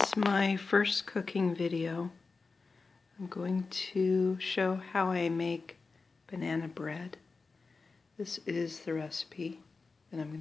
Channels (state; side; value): quieter; right; 4.2 dB